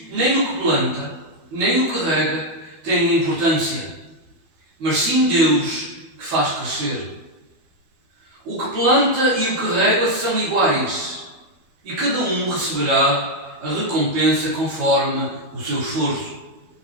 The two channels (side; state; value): left; late; 12 ms